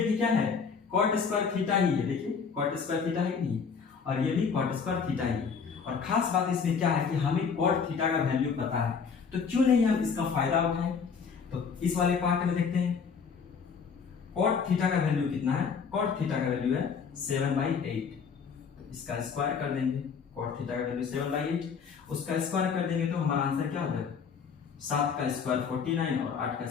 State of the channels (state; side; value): quieter; right; 6.0 dB